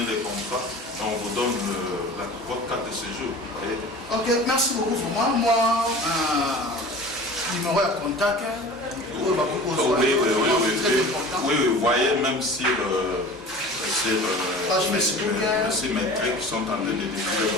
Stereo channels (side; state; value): both; normal; correlation 0.39